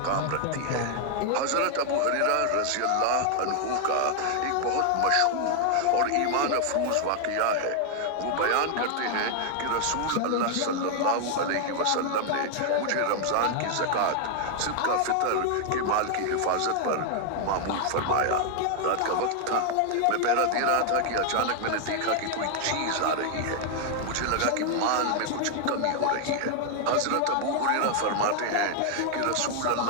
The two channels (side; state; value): both; different; correlation 0.00